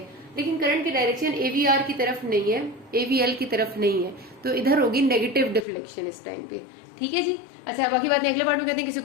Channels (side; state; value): right; drops out; at 5.7 s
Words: लेकिन करंट की डायरेक्शन AVR की तरफ नहीं है, AVL की तरफ नहीं है, तो इधर होगी नेगेटिव डिफ्लेक्शन इस टाइम पे। ठीक है जी। अच्छा, बाकी बातें अगले पार्ट में करते हैं। किसी